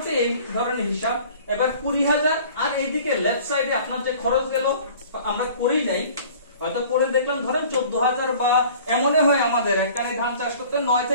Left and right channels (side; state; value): both; inverted; correlation -0.48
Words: এই ধরনের হিসাব। এবার 20,000 আর এইদিকে লেফট সাইডে আপনার যে খরচ গেল আমরা করি নাই, হয়তো করে দেখলাম ধরেন 14,000 বা এমনই হয় আমাদের একটানি ধান চাষ করতে 9